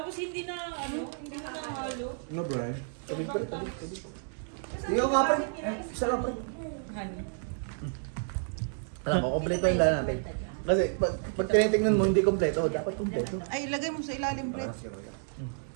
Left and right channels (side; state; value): left; silent; digital silence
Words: hindi na, hindi na nahalo. No, Brian. Ikaw nga pre. Isa lang pre. Honey. Alam mo, kompleto yung lahat natin. Kasi pag tinitingnan mo hindi kompleto, dapat kompleto. Ay, ilagay mo sa ilalim, Brett.